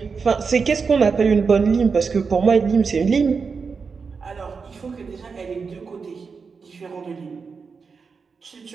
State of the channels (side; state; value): left; quieter; 5.2 dB